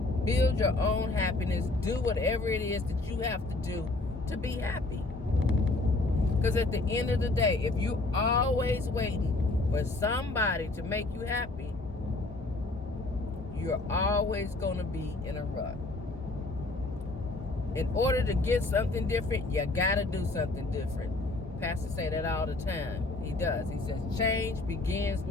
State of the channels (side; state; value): right; quieter; 3.0 dB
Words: Build your own happiness. Do whatever it is that you have to do to be happy. Because at the end of the day, if you're always waiting for somebody to make you happy, you're always going to be in a rut. In order to get something different, you got to do something different. Pastor say that all the time. He does. He says, change begins